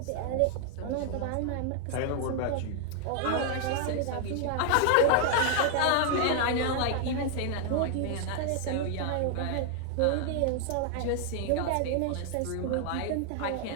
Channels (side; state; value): both; different; correlation 0.00